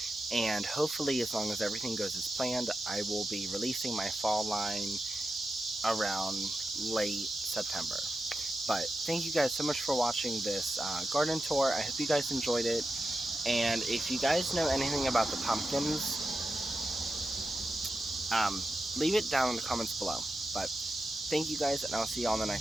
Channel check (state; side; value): normal; both; correlation 0.90